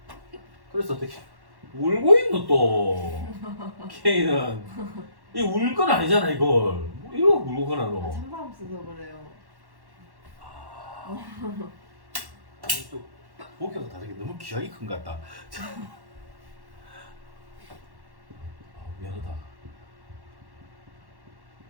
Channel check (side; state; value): left; late; 1.1 ms